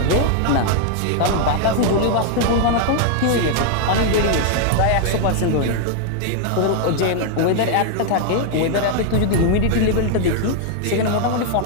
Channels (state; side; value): different; both; correlation 0.00